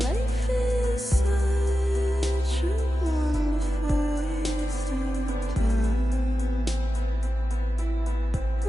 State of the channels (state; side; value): normal; both; correlation 0.92